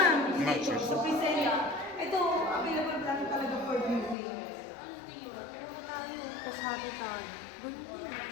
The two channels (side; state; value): right; drops out; at 4.2 s